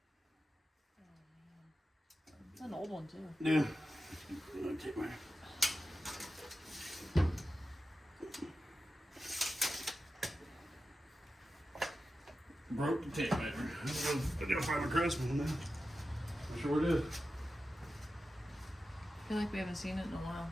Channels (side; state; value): both; normal; correlation 0.92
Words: It's an old one too. Yeah. Take my. Broke the tape measure. I gotta find my Craftsman now. I'm sure it is. I feel like we haven't seen it in a while.